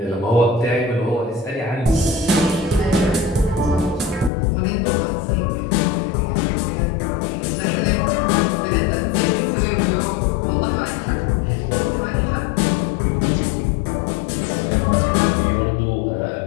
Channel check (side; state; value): right; drops out; at 4.3 s